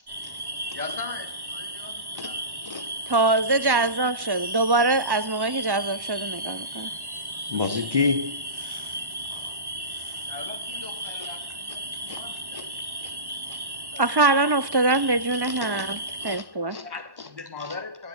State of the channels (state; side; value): late; left; 1.1 ms